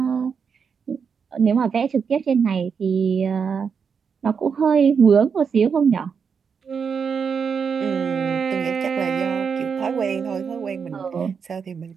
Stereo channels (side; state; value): left; quieter; 6.3 dB